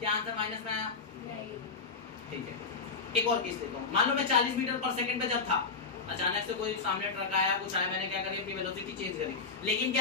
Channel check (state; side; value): quieter; right; 4.8 dB